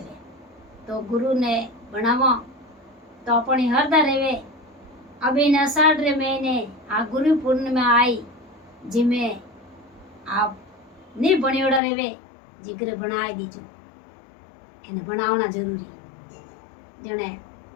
तो गुरु ने बनावो तो अपनी हरदा रेवे। अभी न अषाढ़ रे महीने आ गुरु पूर्णिमा आई जिमे आप नहीं बनियोड़ा रेवे जिगर बनाए दीजो। એને બનાવना जरूरी। जने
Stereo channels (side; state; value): right; drops out; at 11.8 s